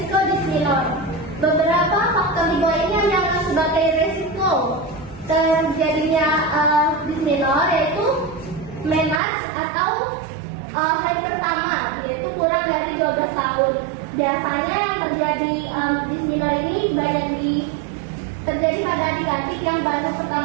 disminor. Beberapa faktor di bawah ini yang sebagai resiko terjadinya disminor yaitu menarche atau hari pertama, yaitu kurang dari 12 tahun. Biasanya yang terjadi disminor ini banyak terjadi pada adik-adik yang baru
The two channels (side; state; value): left; drops out; at 9.2 s